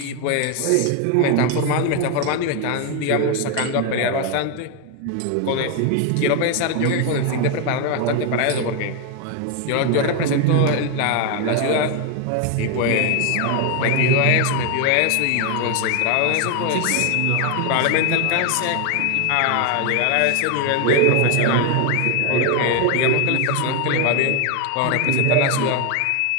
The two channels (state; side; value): different; both; correlation 0.01